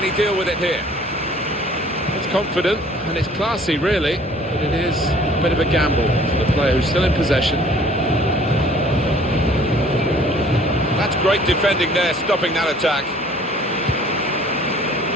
he deal with it here? It's confident and it's classy, really, but it is a bit of a gamble for the player who's still in possession. That's great defending there, stopping that attack.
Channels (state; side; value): normal; both; correlation 0.54